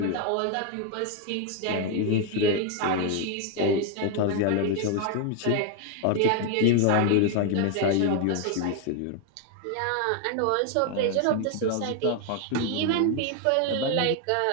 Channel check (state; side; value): different; both; correlation 0.01